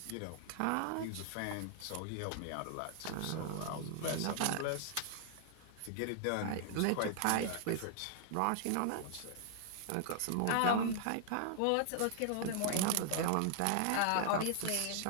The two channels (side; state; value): both; different; correlation 0.00